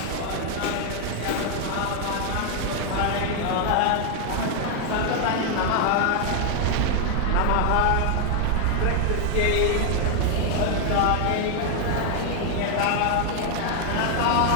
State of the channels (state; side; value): different; both; correlation 0.00